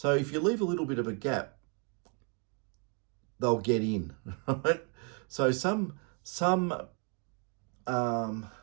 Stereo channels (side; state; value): left; quieter; 37.6 dB